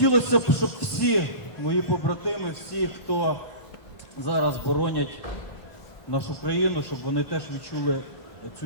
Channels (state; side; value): late; right; 1.1 ms